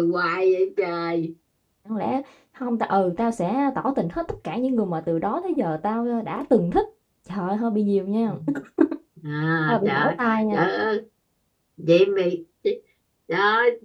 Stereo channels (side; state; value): both; identical; correlation 1.00